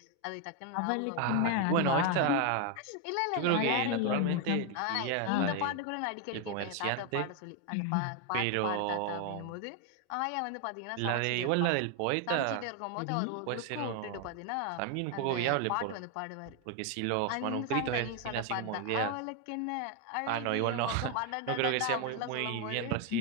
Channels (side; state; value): both; different; correlation 0.01